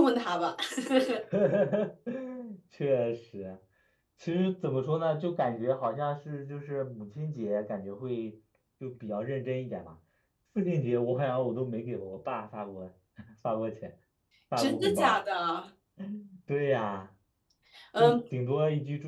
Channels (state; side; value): identical; both; correlation 1.00